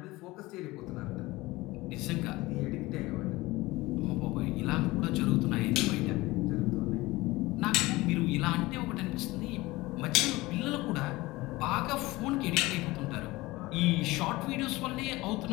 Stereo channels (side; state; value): right; quieter; 20.2 dB